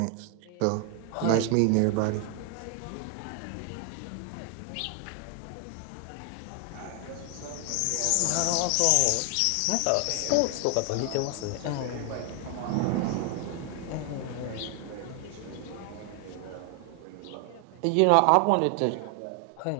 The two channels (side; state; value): both; different; correlation 0.00